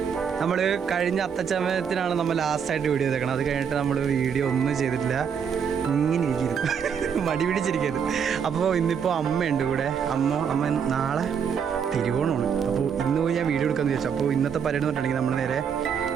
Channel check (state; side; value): quieter; left; 7.2 dB